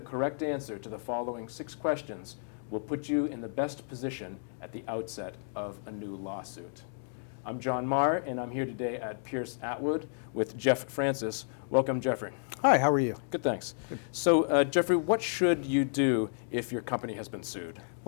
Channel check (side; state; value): right; silent; digital silence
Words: answer to the following 6 questions will put you in the best position at the outset of a new lawsuit. I'm John Marr, and I'm here today at Pierce Atwood with Jeff Francis. Welcome, Jeffrey. Hi, how are you? Good, thanks. So, Jeffrey, what should you do if your company has been sued?